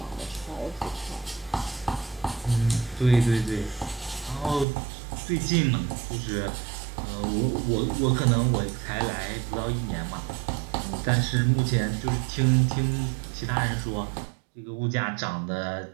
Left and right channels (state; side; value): drops out; left; at 4.7 s